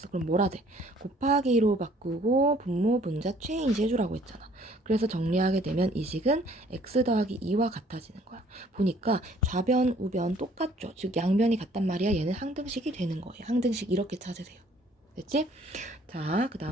그럼 뭐라 돼? 곱하기로 바꾸고 분모, 분자, 체인지 해주라고 했잖아. 그래서 정리하게 되면 이 식은 x 더하기 2와 같아지는 거야. 보니까 좌변, 우변 똑같죠? 즉 양변이 같단 말이야. 얘는 항등식이 되는 거예요. 항등식 이렇게 찾으세요. 됐지? 자, 그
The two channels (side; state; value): both; normal; correlation 0.58